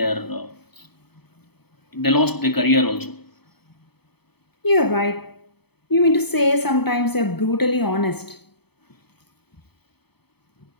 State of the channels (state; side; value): late; right; 0.98 ms